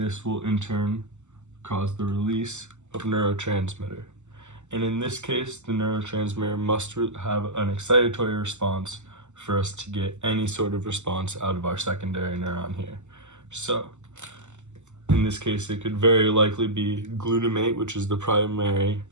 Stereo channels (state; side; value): late; left; 0.84 ms